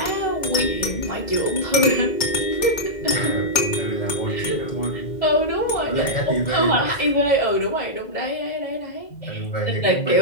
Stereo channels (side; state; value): right; late; 2.0 ms